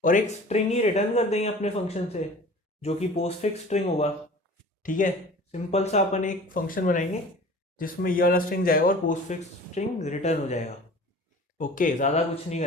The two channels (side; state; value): both; normal; correlation 0.43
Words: और एक स्ट्रिंग ही रिटर्न कर देंगे अपने फंक्शन से, जो कि पोस्टफिक्स स्ट्रिंग होगा, ठीक है। सिंपल सा अपन एक फंक्शन बनाएंगे जिसमें ये वाला स्ट्रिंग जाएगा और पोस्टफिक्स स्ट्रिंग रिटर्न हो जाएगा। ओके, ज़्यादा कुछ नहीं